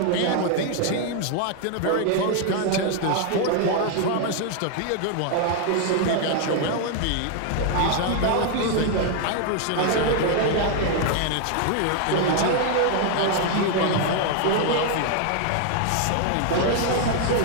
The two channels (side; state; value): both; different; correlation 0.00